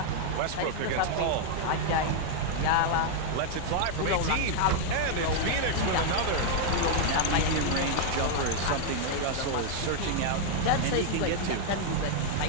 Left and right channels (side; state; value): both; different; correlation 0.00